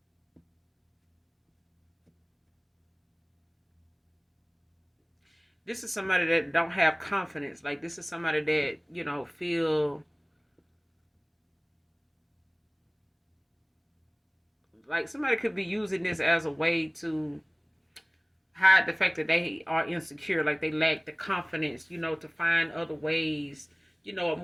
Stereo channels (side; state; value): both; identical; correlation 1.00